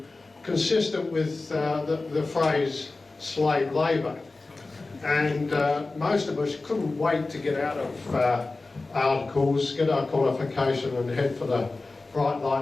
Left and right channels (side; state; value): right; quieter; 3.4 dB